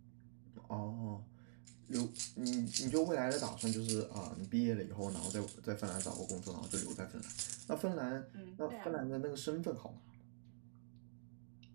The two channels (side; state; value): left; silent; digital silence